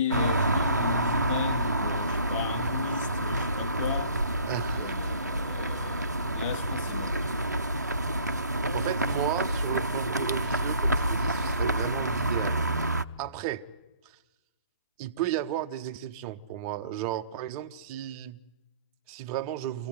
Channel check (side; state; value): both; inverted; correlation -0.53